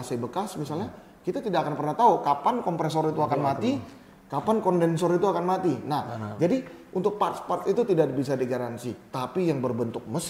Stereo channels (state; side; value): identical; both; correlation 1.00